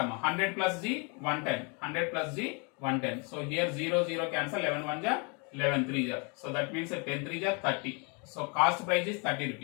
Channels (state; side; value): quieter; right; 33.3 dB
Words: plus G 110, 100 plus G 110. So here 0 0 cancel, 11 1 ja 11 3 ja. So that means 10 3 ja 30. So cost price is 30